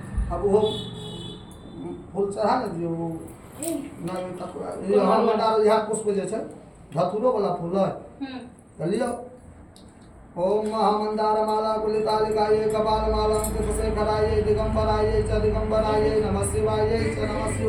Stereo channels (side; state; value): both; identical; correlation 1.00